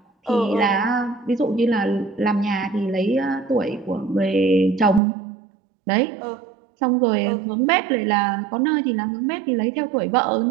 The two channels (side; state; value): left; drops out; at 5.0 s